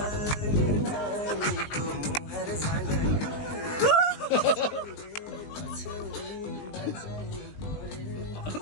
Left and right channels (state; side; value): late; right; 19 ms